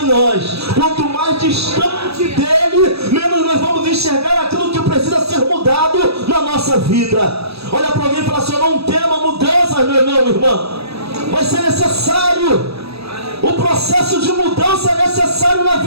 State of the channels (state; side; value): late; left; 0.78 ms